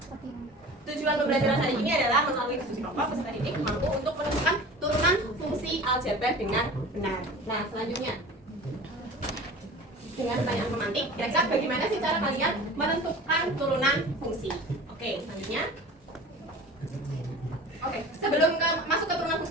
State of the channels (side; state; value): both; normal; correlation 0.39